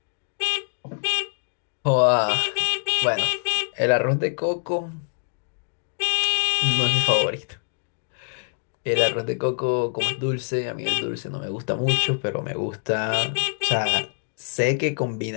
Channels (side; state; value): right; silent; 62 dB below the other